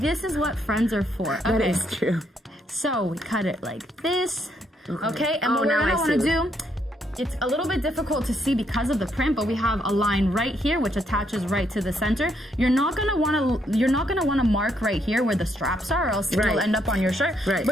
is what friends are for. Okay. That is true. So we cut it like this. Okay, and what we're gonna wanna do it's a little bit difficult to see because of the print, but we have a line right here which attaches right to the center. You're not gonna wanna mark right here where the straps are, or else it will end up on your shirt. Right.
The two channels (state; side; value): normal; both; correlation 0.74